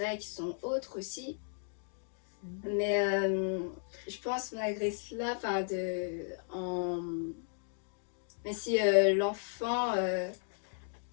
qui sont autres aussi. Mais je pense malgré cela, mais si l'enfant,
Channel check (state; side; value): silent; right; digital silence